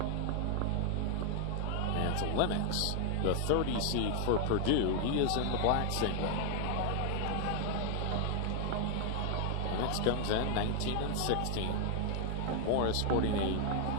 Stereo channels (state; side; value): different; both; correlation 0.00